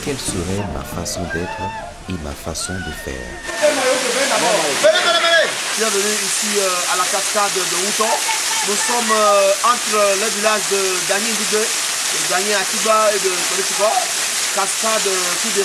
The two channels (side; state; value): both; identical; correlation 1.00